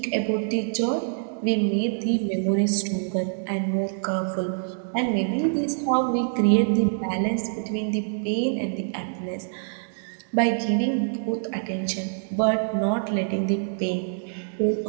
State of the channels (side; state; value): left; silent; digital silence